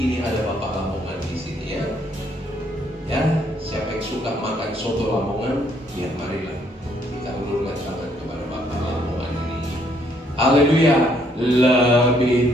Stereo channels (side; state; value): both; normal; correlation 0.68